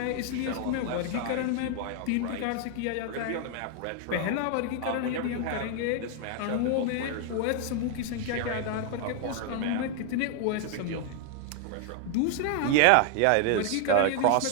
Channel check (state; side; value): different; both; correlation 0.00